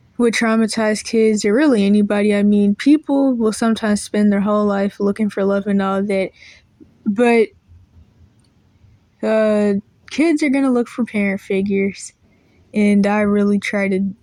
with traumatized kids or really anybody, I mean, people will sometimes spend their whole life looking for love and all that, but kids are gonna look for parent figures, and I really try to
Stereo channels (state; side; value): identical; both; correlation 1.00